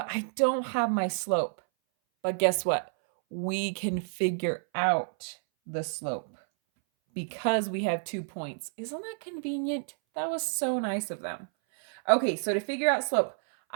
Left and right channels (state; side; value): silent; left; 58 dB below the other